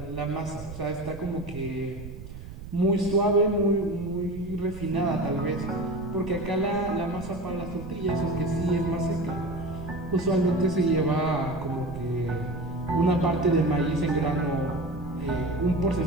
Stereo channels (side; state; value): right; noise; rumble, 13 dB below the sound